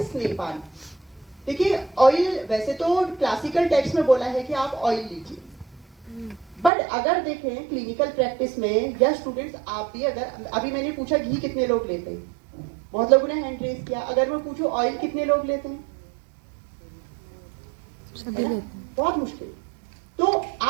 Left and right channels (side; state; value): left; drops out; at 6.7 s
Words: स्नेहपान। देखिए ऑयल, वैसे तो क्लासिकल टेक्स्ट में बोला है कि आप ऑयल लीजिए, बट अगर देखें क्लिनिकल प्रैक्टिस में या स्टूडेंट्स आप भी, अगर अभी मैंने पूछा घी कितने लोग लेते हैं, बहुत लोगों ने हैंड रेज किया। अगर मैं पूछूं ऑयल कितने लोग लेते हैं, बहुत मुश्किल। तो